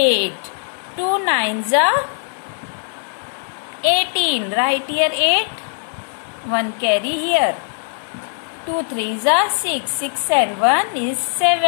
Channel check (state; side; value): silent; right; digital silence